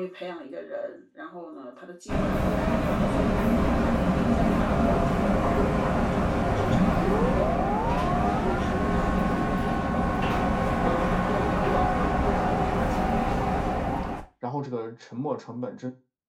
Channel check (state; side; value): identical; both; correlation 1.00